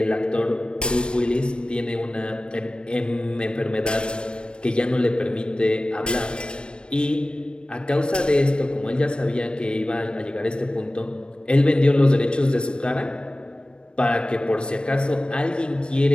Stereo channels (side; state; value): right; late; 0.055 ms